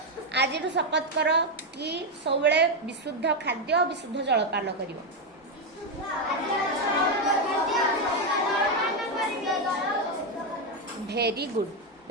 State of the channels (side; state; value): both; normal; correlation 0.06